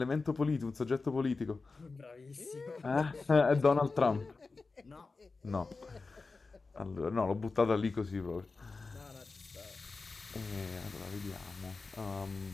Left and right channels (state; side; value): quieter; right; 4.0 dB